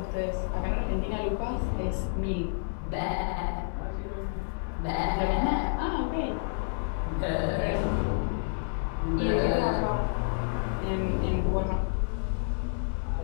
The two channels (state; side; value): silent; right; 58 dB below the other